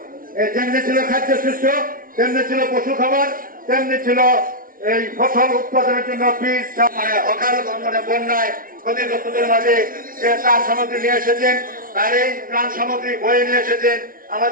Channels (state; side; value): late; left; 0.41 ms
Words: যেমনি ছিল খাদ্যশস্য, তেমনি ছিল পশু খাবার, তেমনি ছিল এই ফসল উৎপাদনের জন্য বীজ, অকাল বন্যায় ক্ষতিগ্রস্তদের মাঝে যে ত্রাণ সামগ্রী নিয়ে এসেছেন, তার এই ত্রাণ সামগ্রী বয়ে নিয়ে এসেছেন